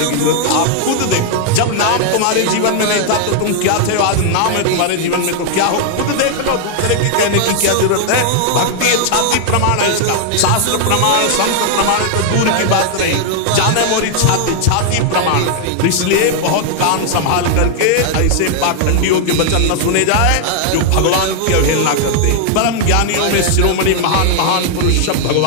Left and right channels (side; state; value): both; different; correlation 0.00